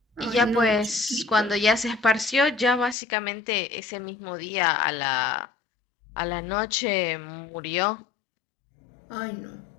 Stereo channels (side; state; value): right; drops out; at 3.0 s